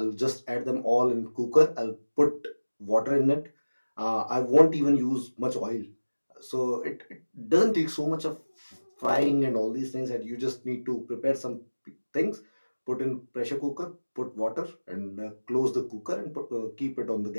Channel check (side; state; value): both; inverted; correlation -1.00